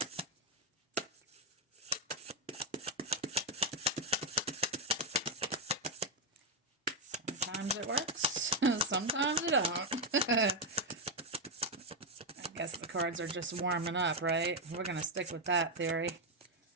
Sometimes it works, sometimes it don't. I guess the cards are just warming up, right? We're going to stick with that theory.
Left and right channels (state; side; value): normal; both; correlation 0.04